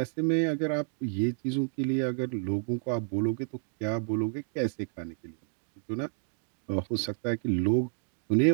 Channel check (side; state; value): left; silent; 58 dB below the other